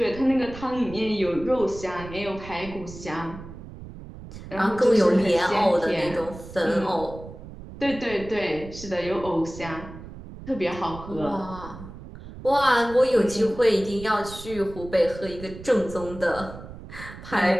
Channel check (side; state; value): right; noise; rumble, 14 dB below the sound